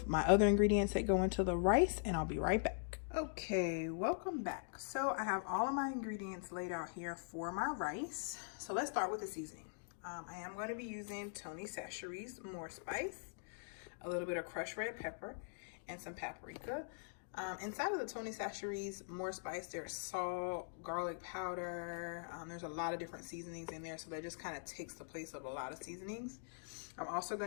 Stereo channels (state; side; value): silent; right; digital silence